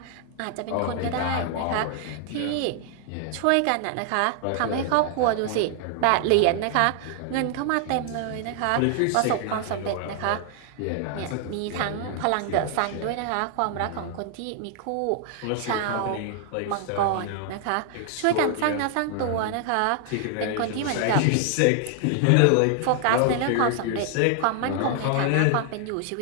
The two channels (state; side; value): different; both; correlation 0.00